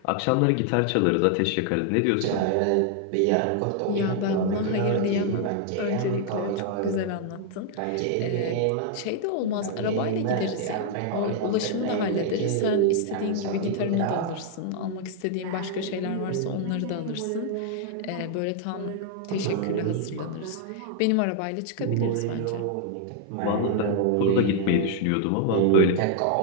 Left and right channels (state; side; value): different; both; correlation 0.00